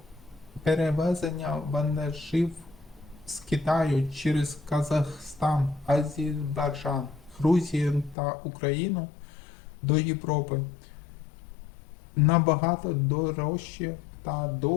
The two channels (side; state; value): right; drops out; at 8.2 s